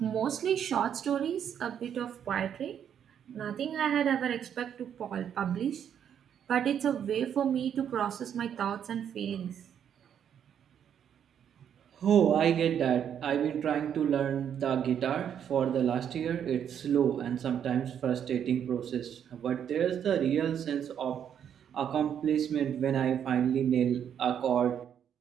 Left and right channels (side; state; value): left; quieter; 8.8 dB